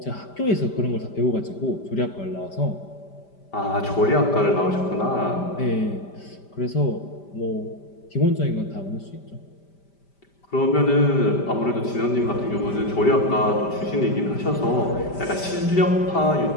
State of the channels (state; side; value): late; right; 5.1 ms